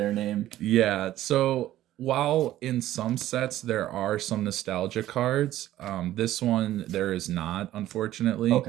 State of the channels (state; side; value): quieter; left; 13.8 dB